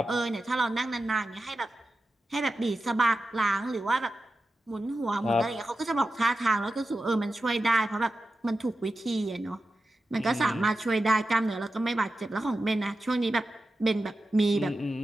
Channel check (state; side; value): normal; both; correlation 0.92